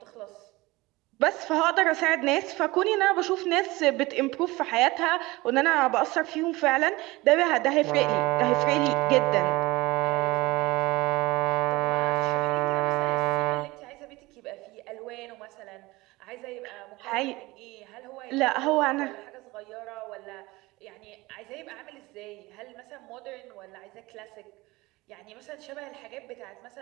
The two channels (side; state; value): left; quieter; 21.2 dB